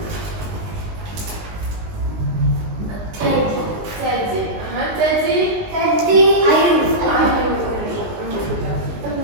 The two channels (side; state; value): left; late; 19 ms